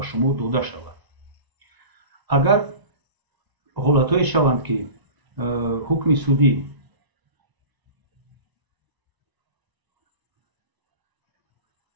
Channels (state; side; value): late; left; 1.0 ms